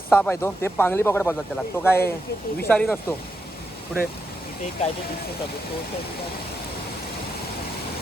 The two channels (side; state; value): both; normal; correlation 0.84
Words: आहे तो, ते पांगली पकड बोलतात त्याला. तो काय विषारी नसतो. पुढे काय